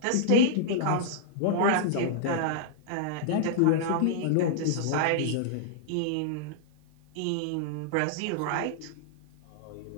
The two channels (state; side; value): different; both; correlation -0.01